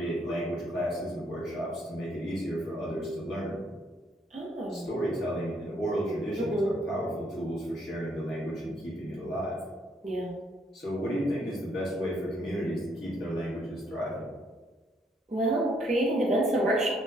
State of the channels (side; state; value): both; normal; correlation 0.70